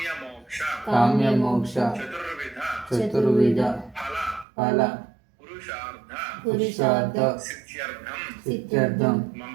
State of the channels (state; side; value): drops out; left; at 4.5 s